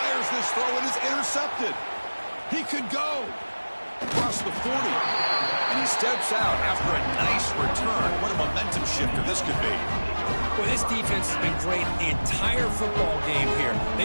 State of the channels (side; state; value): both; inverted; correlation -1.00